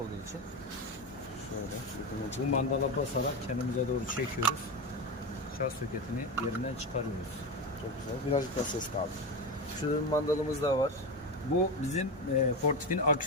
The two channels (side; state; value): both; normal; correlation 0.18